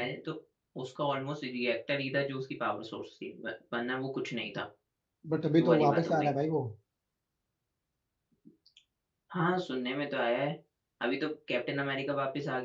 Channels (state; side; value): identical; both; correlation 1.00